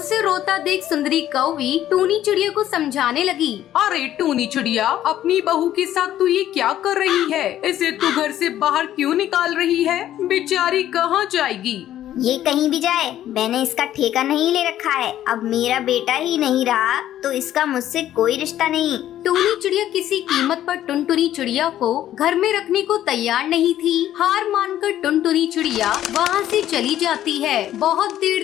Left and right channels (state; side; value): quieter; right; 12.2 dB